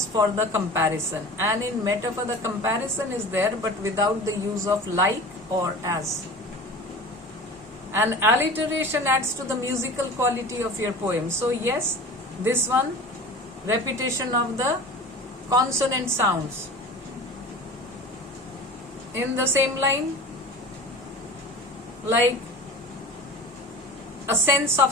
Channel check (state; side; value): normal; both; correlation 0.37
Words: for the comparison, and in metaphor the comparison is there but without the use of like or as. And alliteration adds to the musical quality of your poem. So yes, this one, repetition of the consonant sounds in the same line, like a sense of